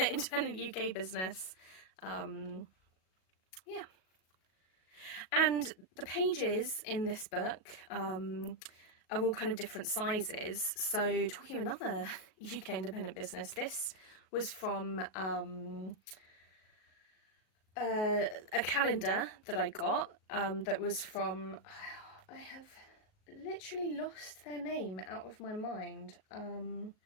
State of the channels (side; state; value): right; late; 37 ms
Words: independent UK business. Yeah. And the pages in this book are all kind of different sizes. So talking of another UK independent business, this was from a calendar that I got that was from, I have literally lost their name out of my mind.